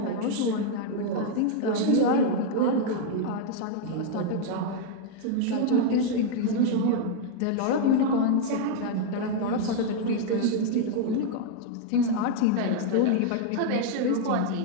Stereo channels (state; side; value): different; both; correlation 0.00